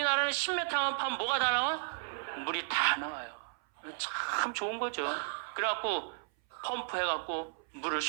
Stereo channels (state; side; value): silent; left; 55 dB below the other